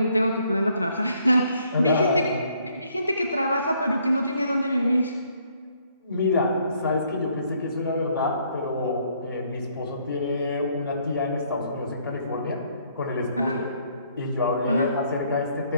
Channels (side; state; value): both; inverted; correlation -0.67